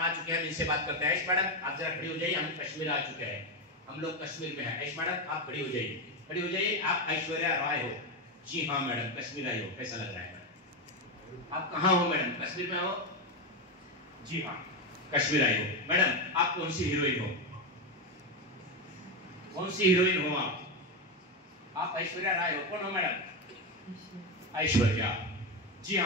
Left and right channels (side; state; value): both; normal; correlation 0.11